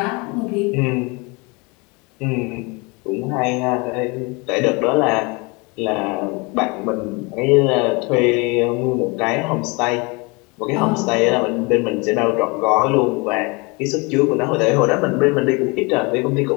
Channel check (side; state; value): right; quieter; 28.2 dB